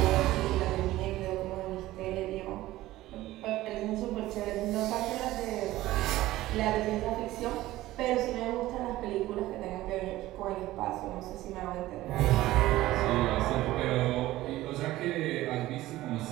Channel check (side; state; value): left; quieter; 16.4 dB